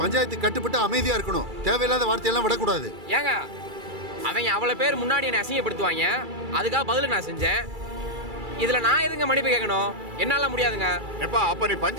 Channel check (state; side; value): late; left; 2.3 ms